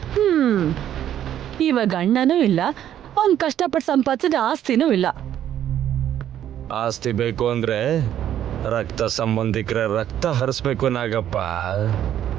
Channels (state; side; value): quieter; left; 10.9 dB